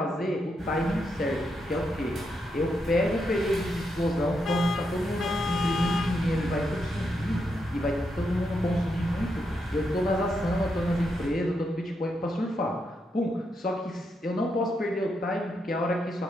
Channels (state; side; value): normal; both; correlation 0.82